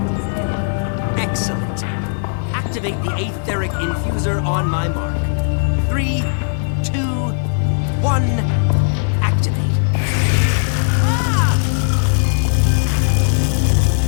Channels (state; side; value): silent; right; digital silence